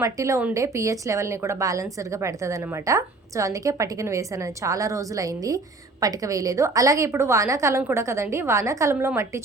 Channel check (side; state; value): left; quieter; 3.3 dB